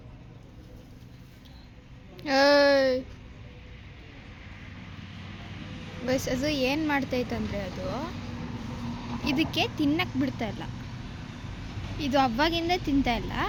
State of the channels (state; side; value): identical; both; correlation 1.00